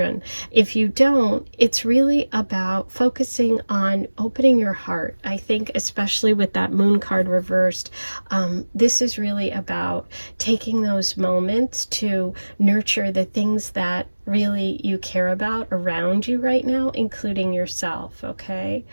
If you don't, it's really about focusing on opening your heart. I think especially with that moon card reversed, this is really about taking those moments to nurture the things that really you care about around you right now, including yourself. Okay,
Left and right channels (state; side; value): inverted; both; correlation -1.00